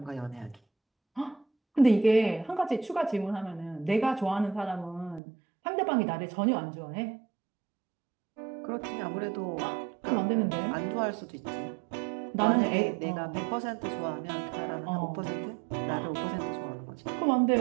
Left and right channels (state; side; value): drops out; left; at 5.2 s